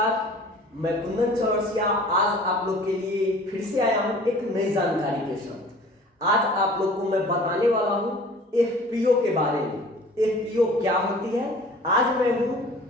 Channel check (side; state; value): both; normal; correlation 0.47